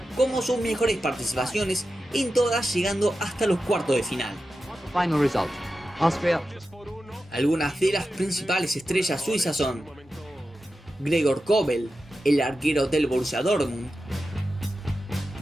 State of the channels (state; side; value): normal; both; correlation 0.92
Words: como sus mejores participaciones, en todas llegando hasta los cuartos de final. Final result: Austria. Algunas de las principales estrellas suizas son Gregor Kobel, el arquero del Borussia Dortmund,